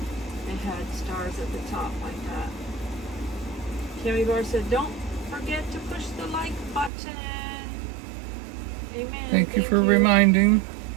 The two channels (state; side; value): drops out; left; at 6.9 s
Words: It had stars at the top like that. Cammy Bar said, "Don't forget to push the like button." Amen. Thank you for reminding.